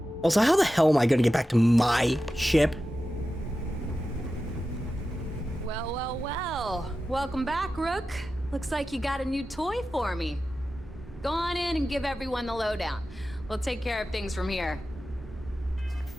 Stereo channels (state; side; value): normal; both; correlation 0.93